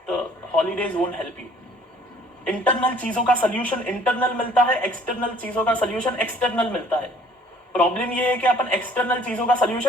the holidays won't help you. Internal चीजों का सोल्यूशन इंटरनल मिलता है, एक्सटर्नल चीजों का सोल्यूशन एक्सटर्नल मिलता है. प्रॉब्लम ये है कि अपन एक्सटर्नल चीजों का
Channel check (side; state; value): both; normal; correlation 0.56